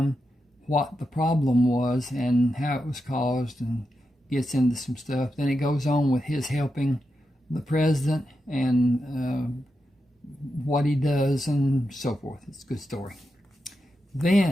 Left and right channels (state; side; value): normal; both; correlation 0.87